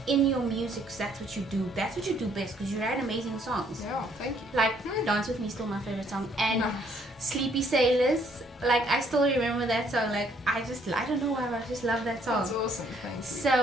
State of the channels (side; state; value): both; normal; correlation 0.66